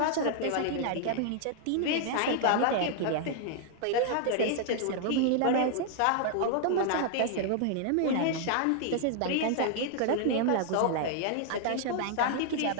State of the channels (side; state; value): both; different; correlation -0.01